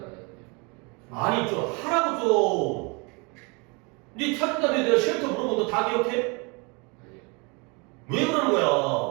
아니 좀 하라고 좀. 네 찾은 다음에 내가 쉘터 물어보면 너 다 기억해? 아니요. 왜 그러는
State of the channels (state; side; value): quieter; left; 30.4 dB